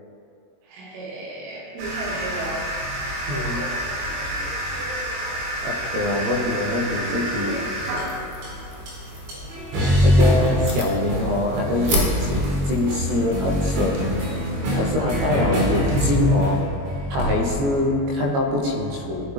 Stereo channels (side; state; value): left; late; 21 ms